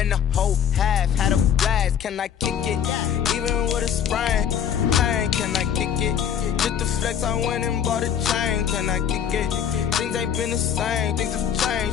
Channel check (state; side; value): quieter; right; 8.6 dB